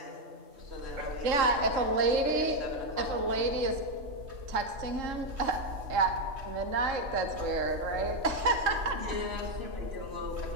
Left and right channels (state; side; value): late; left; 3.7 ms